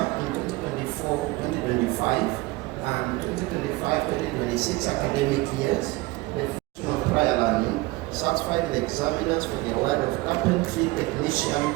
in 2024-2025 and 2025-2026 academic years, the function of prior learning satisfied the examiners for the award of Carpentry Technician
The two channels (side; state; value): left; quieter; 21.4 dB